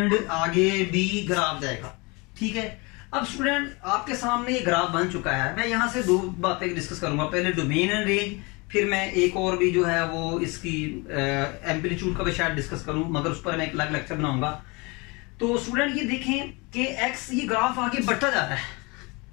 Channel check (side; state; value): right; quieter; 27.4 dB